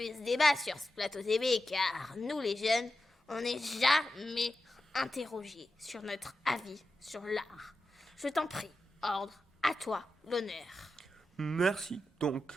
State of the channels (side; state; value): both; normal; correlation 0.90